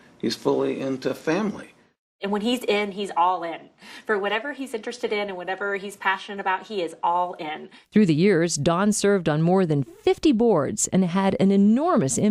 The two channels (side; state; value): both; identical; correlation 1.00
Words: He's fully into family. And when he's in, he's all in. For whatever he's interested in and whatever he's passionate about, he is all in. Through the years, Don served on more than 50 boards and had an enormous